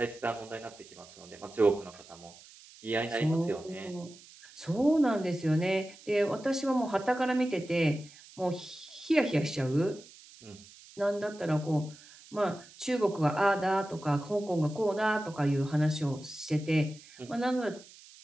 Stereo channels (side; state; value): right; noise; hiss, 21 dB below the sound